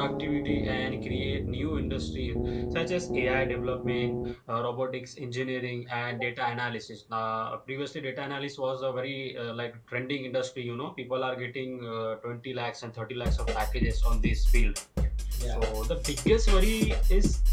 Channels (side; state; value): both; identical; correlation 1.00